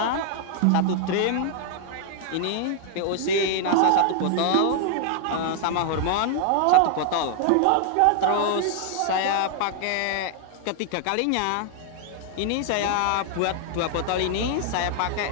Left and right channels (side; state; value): both; different; correlation 0.00